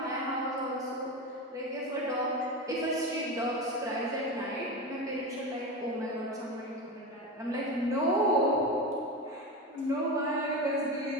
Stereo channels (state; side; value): normal; both; correlation 0.22